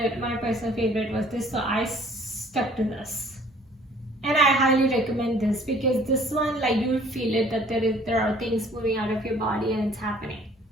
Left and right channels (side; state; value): both; normal; correlation 0.55